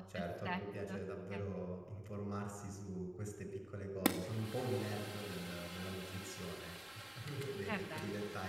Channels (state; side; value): noise; left; rumble, 27 dB below the sound